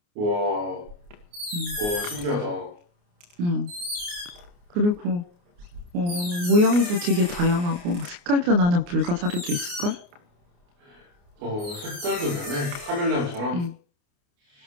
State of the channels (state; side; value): late; left; 29 ms